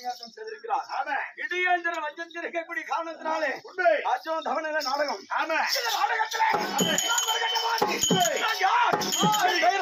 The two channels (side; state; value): both; identical; correlation 1.00